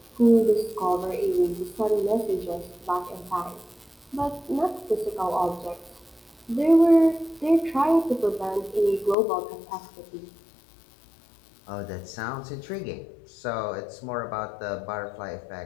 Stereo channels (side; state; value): right; drops out; at 9.2 s